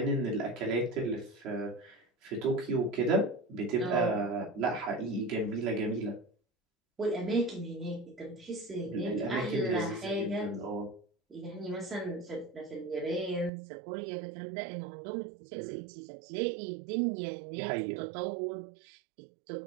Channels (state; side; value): drops out; left; at 13.5 s